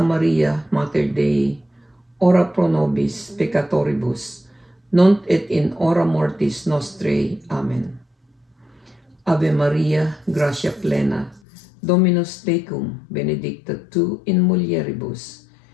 Maria, Mater Dei, ora pro nobis peccatoribus, nunc et in hora mortis nostrae. Amen. Ave Maria, gratia plena, Dominus tecum benedicta tu in mulieribus,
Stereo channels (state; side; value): drops out; right; at 11.4 s